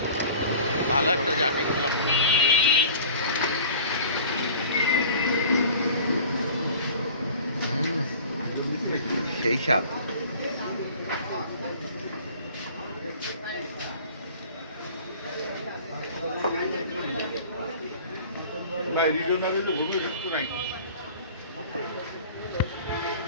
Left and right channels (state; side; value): inverted; both; correlation -0.44